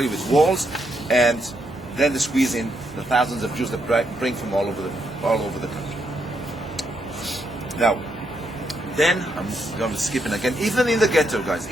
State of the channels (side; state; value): both; normal; correlation 0.78